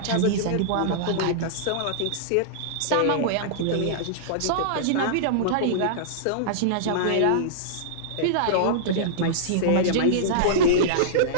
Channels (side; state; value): both; different; correlation -0.02